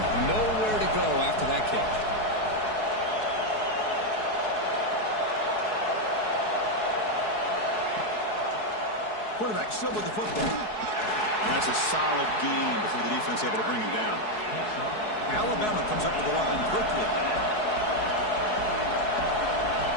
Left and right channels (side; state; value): right; late; 4.7 ms